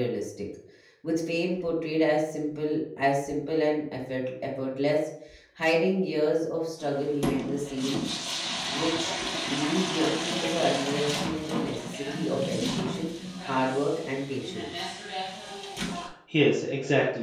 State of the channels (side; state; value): both; identical; correlation 1.00